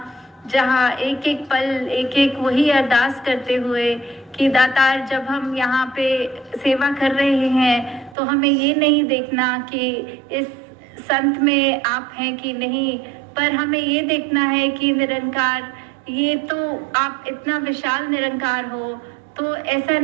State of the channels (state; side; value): drops out; left; at 8.2 s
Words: जहाँ एक एक पल एक एक वही अरदास करते हुए कि दातार जब हम यहाँ पे सेवा कर रहे हैं तो हमें ये नहीं देखना कि इस संत में आप हैं कि नहीं, पर हमें ये देखना है कि निरंकार ये तो आप इतना विशाल निरंकार हो, तो ऐसा